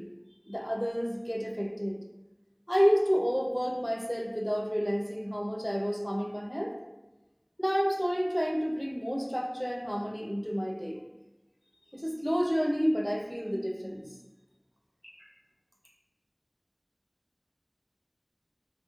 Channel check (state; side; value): identical; both; correlation 1.00